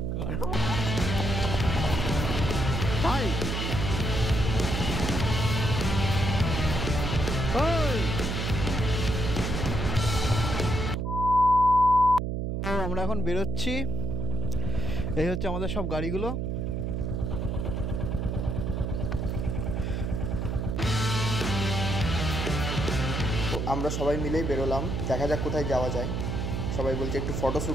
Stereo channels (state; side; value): noise; right; hum, 1 dB below the sound